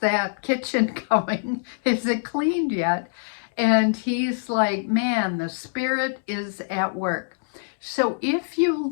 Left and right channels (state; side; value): silent; right; digital silence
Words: kitchen going? Is it cleaned yet? And he's like, man, the Spirit is at work. So if you